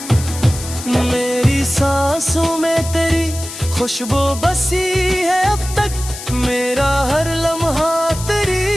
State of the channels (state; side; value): noise; left; hiss, 11 dB below the sound